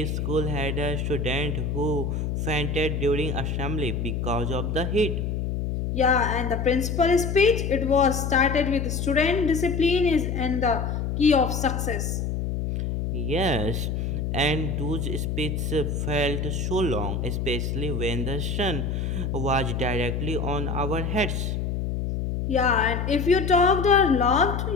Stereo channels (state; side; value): noise; left; hum, 1 dB below the sound